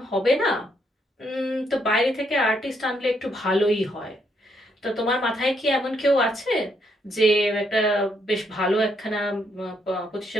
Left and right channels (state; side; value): normal; both; correlation 0.75